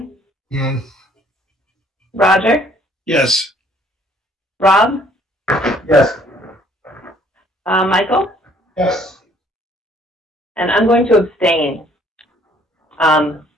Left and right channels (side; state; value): both; normal; correlation 0.61